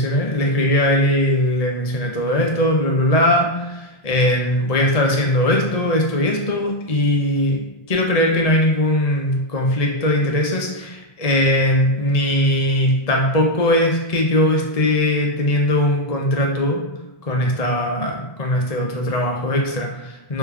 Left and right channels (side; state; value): right; late; 1.7 ms